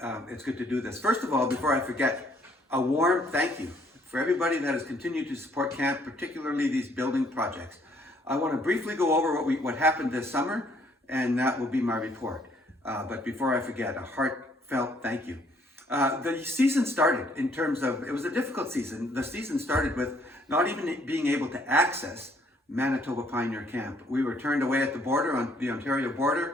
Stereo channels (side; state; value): both; normal; correlation 0.65